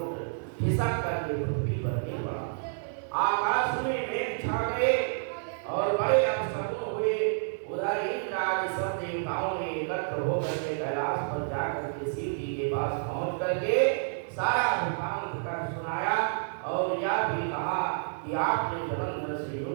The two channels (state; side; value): silent; left; digital silence